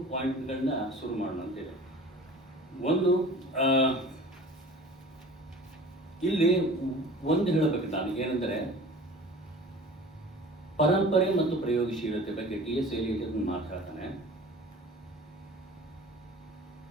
ಪಾಯಿಂಟ್ಗಳನ್ನ ಶುರು ಮಾಡೋಣ ಅಂತಿದೆ. ಒಂದು, ಇಲ್ಲಿ ಒಂದು ಹೇಳಬೇಕು ನಾನು, ಏನೆಂದರೆ ಪರಂಪರೆ ಮತ್ತು ಪ್ರಯೋಗಶೀಲತೆ ಬಗ್ಗೆ TS ಎಲಿಯಟ್ ಮಾತಾಡ್ತಾನೆ.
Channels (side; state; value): both; normal; correlation 0.42